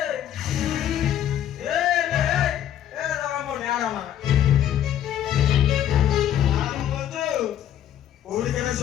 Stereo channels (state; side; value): quieter; right; 10.8 dB